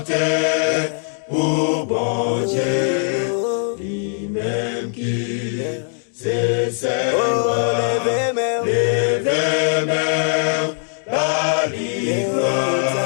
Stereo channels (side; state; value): right; silent; 56 dB below the other